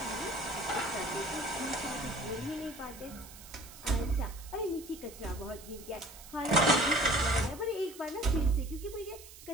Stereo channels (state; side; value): noise; right; hiss, 17 dB below the sound